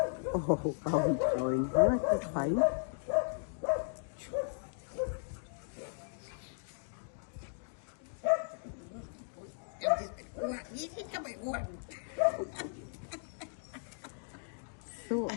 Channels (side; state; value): right; silent; digital silence